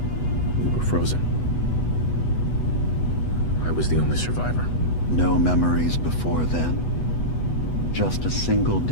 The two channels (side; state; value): right; late; 8.2 ms